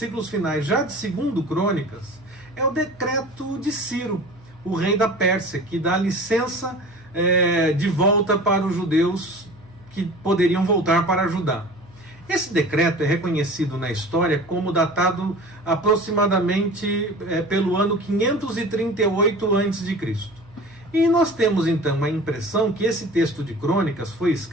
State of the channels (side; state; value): right; noise; hum, 26 dB below the sound